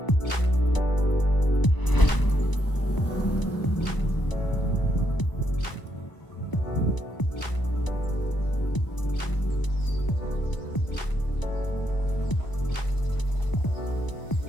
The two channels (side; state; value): right; late; 1.0 ms